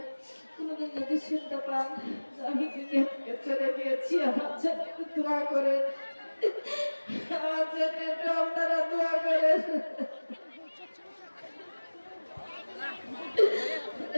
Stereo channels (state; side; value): inverted; both; correlation -1.00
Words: কোনোদিন যদি শুনতে পান আমি দুনিয়া থেকে চলে গিয়েছি, আমার জন্য দোয়া করেন, আমার জন্য আপনারা দোয়া করেন।